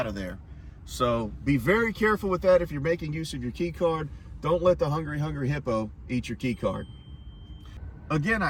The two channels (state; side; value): identical; both; correlation 1.00